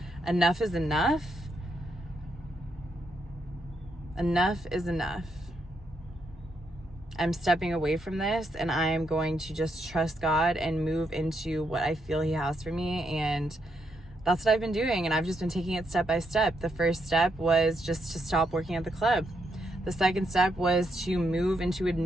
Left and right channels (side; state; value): both; normal; correlation 0.79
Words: enough is enough. Enough is enough. I'm stepping away from this, and I'm going to just trust God and move into what I feel He has for me. And that's what I've been doing. And I've just been taking it step by step. The first step was just to stop working at the club. The second step was to move into a